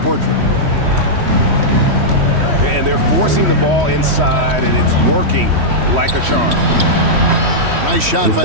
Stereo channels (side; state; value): left; late; 3.1 ms